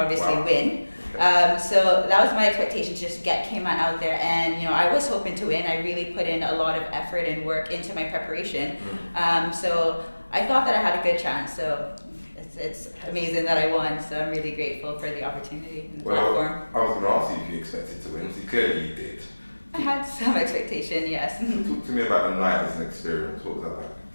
win. So that was my expectation, to just get Cayman out there. And I was hoping to win. I really put in a lot of effort and work into my preparation. So I thought that I had a good chance. So it's amazing that I won. So I'm really grateful for the opportunity and the platform. I was going to ask you if you expected to win. So clearly you did. I had some expectation, yes. Talk to me about the night as an experience. What was that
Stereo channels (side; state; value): both; inverted; correlation -1.00